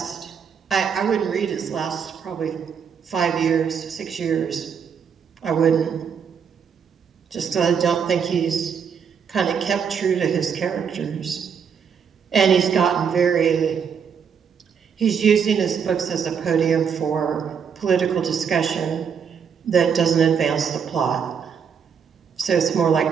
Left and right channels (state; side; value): quieter; left; 7.0 dB